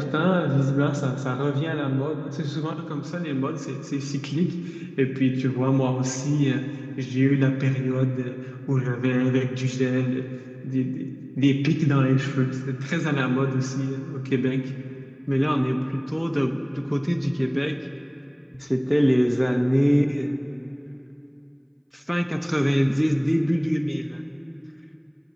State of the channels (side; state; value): both; identical; correlation 1.00